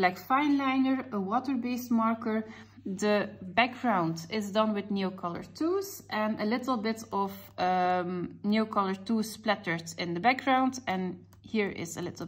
fine liner, a water-based marker. The background is done with Neocolor 2s and a little bit of Neocolor 2 splattered in the background, and here is a little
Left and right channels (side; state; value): both; identical; correlation 1.00